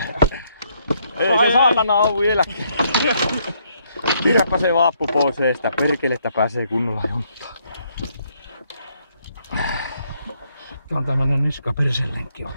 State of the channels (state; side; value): inverted; both; correlation -0.71